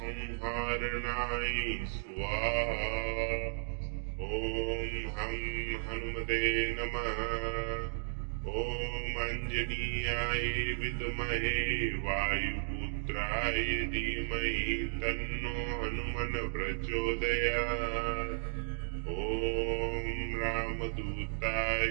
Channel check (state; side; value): silent; left; digital silence